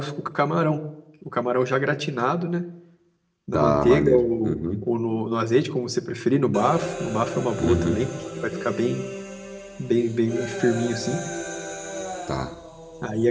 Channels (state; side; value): identical; both; correlation 1.00